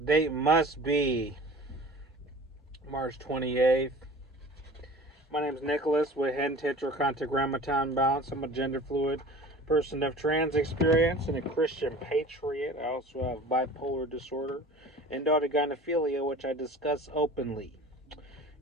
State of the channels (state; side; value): normal; both; correlation 0.42